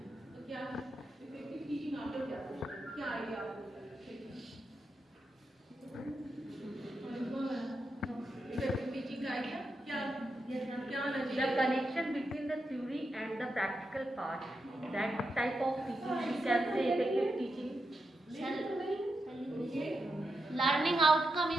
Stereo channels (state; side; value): normal; both; correlation 0.86